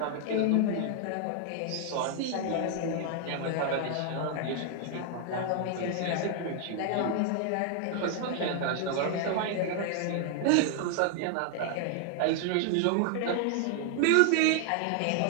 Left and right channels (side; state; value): both; different; correlation 0.00